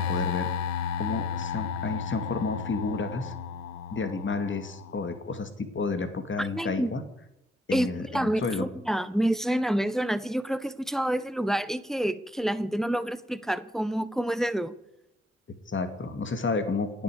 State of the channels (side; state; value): both; normal; correlation 0.62